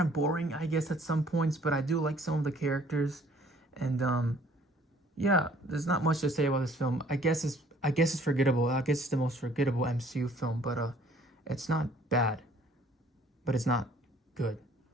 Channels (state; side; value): normal; both; correlation 0.57